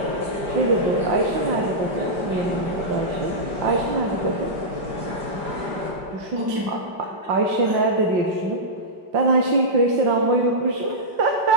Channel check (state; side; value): late; left; 5.1 ms